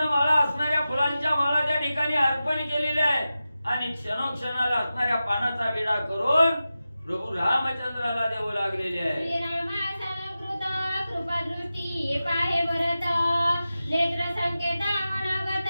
असणाऱ्या फुलांच्या माळा त्या ठिकाणी अर्पण केलेल्या आहेत आणि क्षणोक्षणाला असणाऱ्या पानाचा विडा करून प्रभू रामचंद्राला देऊ लागलेले आहे. श्रीरामासलकृत कृपादृष्टी पाहे भरत नेत्र संकेत मनोगत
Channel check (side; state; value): both; inverted; correlation -0.93